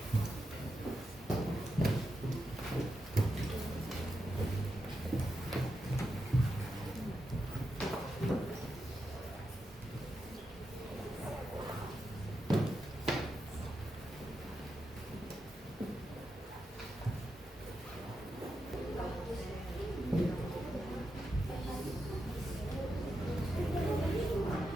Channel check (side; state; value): both; normal; correlation 0.86